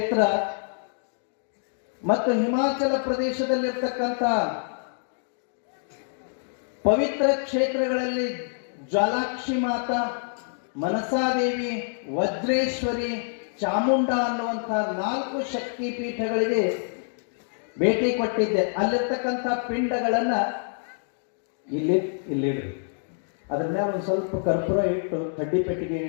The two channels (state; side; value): silent; right; digital silence